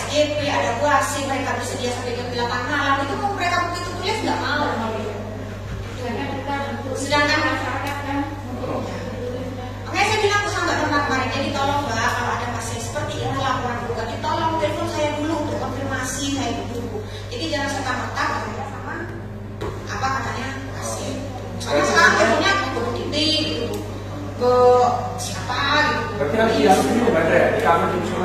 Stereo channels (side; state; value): both; identical; correlation 1.00